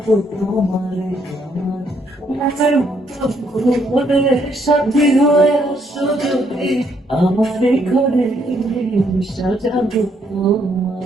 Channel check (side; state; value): both; normal; correlation 0.72